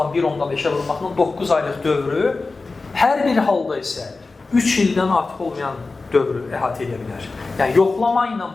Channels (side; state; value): right; quieter; 3.7 dB